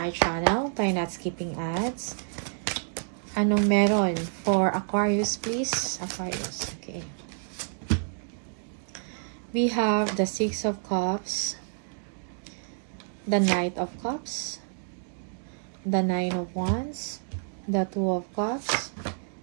channel. Try not skipping ads. Anong meron for Aquarius, please? Aquarius, okay. We have the Six of Cups, the Knight of Cups, the Nine of Wands, the Two of Cups,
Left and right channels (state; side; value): silent; left; digital silence